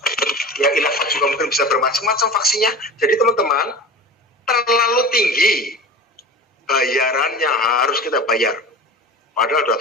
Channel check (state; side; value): normal; both; correlation 0.33